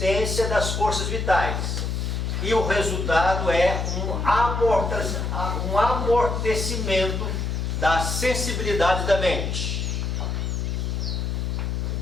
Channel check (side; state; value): left; noise; hum, 1 dB below the sound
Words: das forças vitais. E o resultado é um amortecimento da sensibilidade da mente.